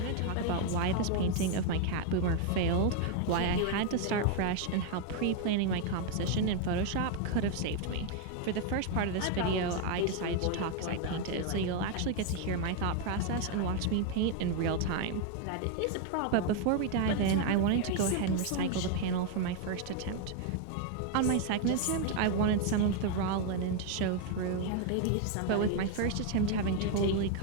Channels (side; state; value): both; different; correlation 0.00